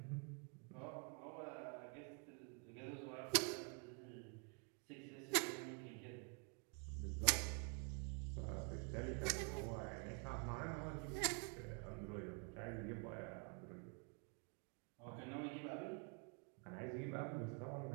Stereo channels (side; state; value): left; quieter; 39.5 dB